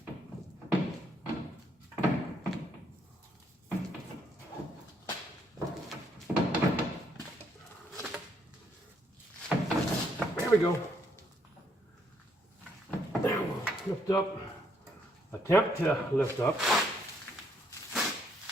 There we go. Now we'll lift up. Attempt to lift up.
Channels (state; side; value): normal; both; correlation 0.71